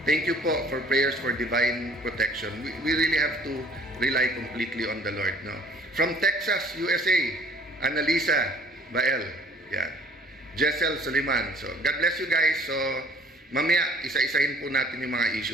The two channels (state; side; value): normal; both; correlation 0.55